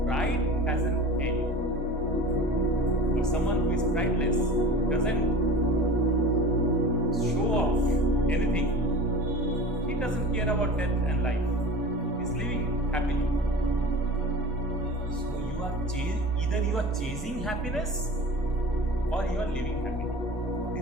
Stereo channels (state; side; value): normal; both; correlation 0.37